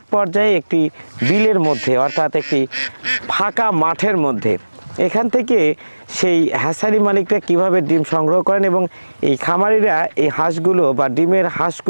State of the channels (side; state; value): both; inverted; correlation -1.00